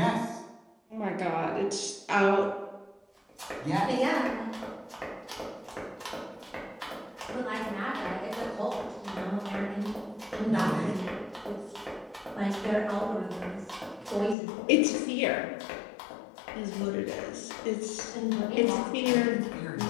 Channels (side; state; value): right; drops out; at 14.4 s